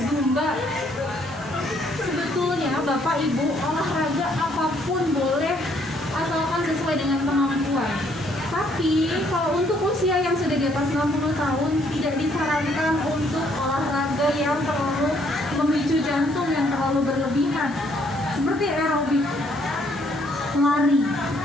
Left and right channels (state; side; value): noise; right; hiss, 23 dB below the sound